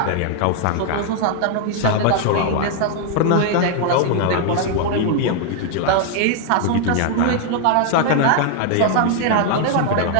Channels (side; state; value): both; different; correlation 0.00